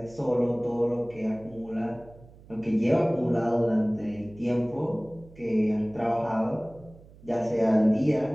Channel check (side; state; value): right; noise; hum, 22 dB below the sound